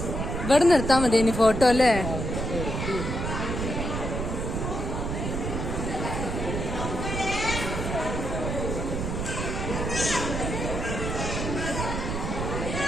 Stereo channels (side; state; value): right; noise; rumble, 3 dB below the sound